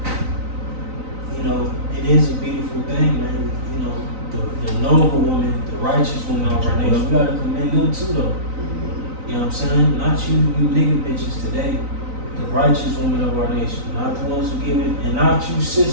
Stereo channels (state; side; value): late; left; 3.9 ms